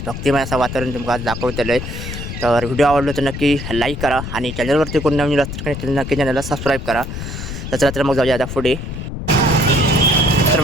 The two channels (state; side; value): noise; left; rumble, 7 dB below the sound